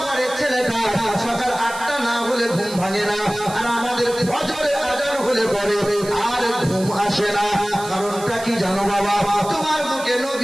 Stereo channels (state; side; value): noise; right; hiss, 14 dB below the sound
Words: ঘরের ছেলেটা সকাল 8টা না হলে ঘুম ভাঙে না আর আমাদের ফজরের আজান হলে পরে আর ঘুম আসে না। কারণটা কি জানো বাবা? তোমার বুকে